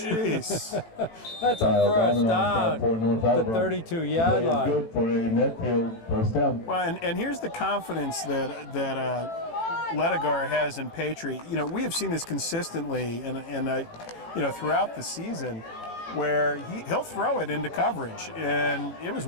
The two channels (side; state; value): right; late; 18 ms